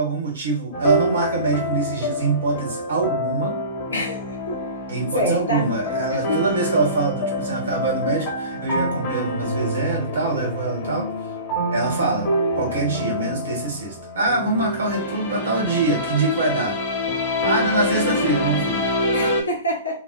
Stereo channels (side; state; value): both; inverted; correlation -0.38